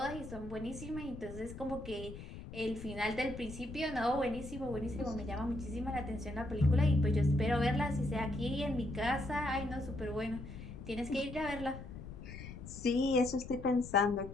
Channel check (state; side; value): noise; left; rumble, 11 dB below the sound